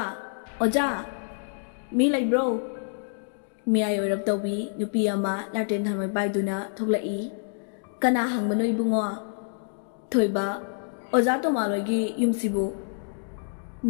oja mi lai bro mi ayo rap tawbi nupi ama laten thamai baiduna thoklai kana hangmano ibungo thoiba oza to malogi yumsibu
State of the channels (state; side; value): silent; right; digital silence